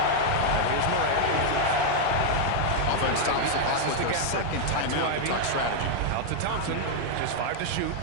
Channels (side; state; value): both; different; correlation 0.00